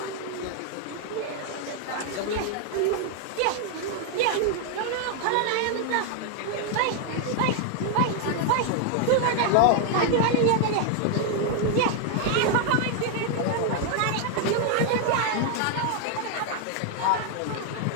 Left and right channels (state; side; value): different; both; correlation 0.00